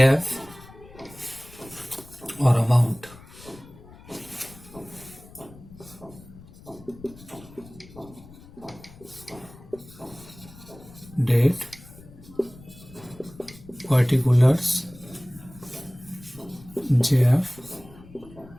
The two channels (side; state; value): left; noise; rumble, 20 dB below the sound